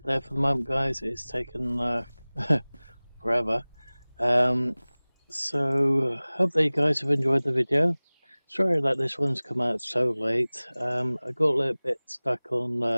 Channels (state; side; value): inverted; both; correlation -1.00